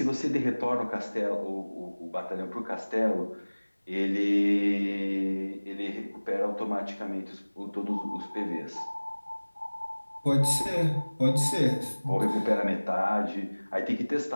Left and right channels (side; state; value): both; inverted; correlation -1.00